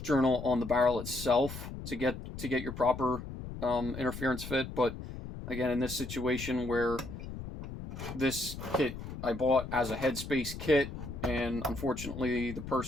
journal on the barrel itself to get your proper interference fit. But again, in this situation where this kit I bought as a headspace kit, and unfortunately the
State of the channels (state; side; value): noise; left; rumble, 9 dB below the sound